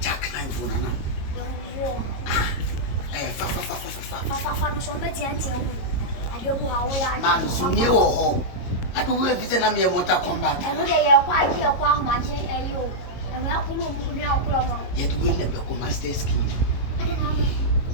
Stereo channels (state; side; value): late; right; 22 ms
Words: Jack nine for Nana. Man, so near or home. I don't know if it's an army motor combat. I know they are quite here, quite much, and you. And we are going to be out from Yet win the Becoma State scheme. I don't know.